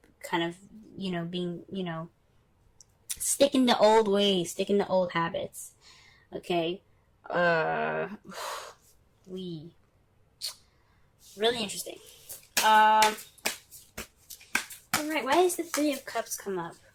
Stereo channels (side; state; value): both; identical; correlation 1.00